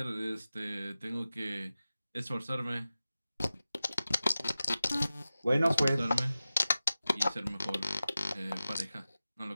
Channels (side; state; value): both; inverted; correlation -0.95